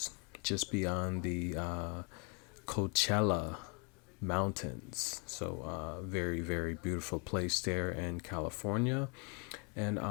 just beyond the Coachella Mountains. So, very, very beautiful place there in California. And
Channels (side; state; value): right; quieter; 32.8 dB